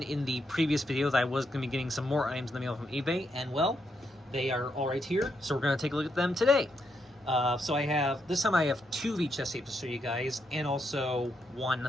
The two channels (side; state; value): both; normal; correlation 0.80